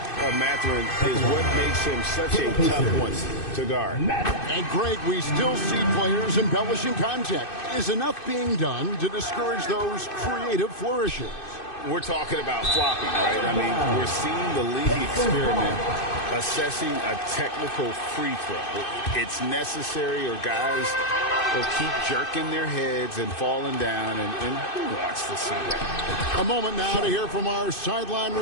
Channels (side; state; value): right; late; 2.6 ms